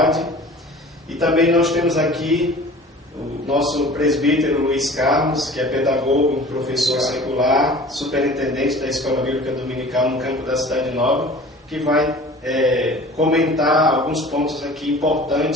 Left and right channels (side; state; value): both; normal; correlation 0.43